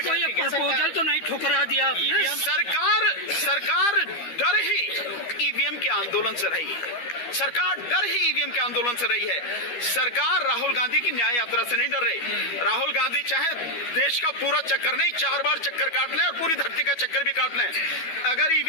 कोई प्रपोजल तो नहीं ठुकरा दिया आपने? सरकार डर ही ईवीएम के आंदोलन से रही है। सरकार डर ही ईवीएम के आंदोलन से रही है। सरकार राहुल गांधी की न्याय यात्रा से नहीं डर रही। राहुल गांधी चाहे देश का पूरा चक्कर नहीं, 4 बार चक्कर काट ले और पूरी धरती का चक्कर भी काट ले, अगर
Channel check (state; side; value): late; right; 12 ms